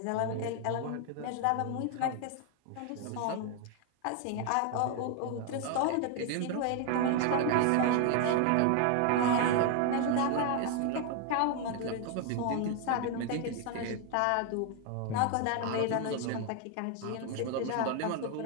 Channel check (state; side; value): different; both; correlation 0.00